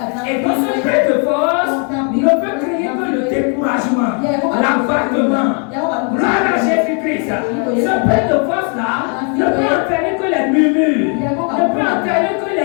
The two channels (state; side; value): quieter; right; 39.2 dB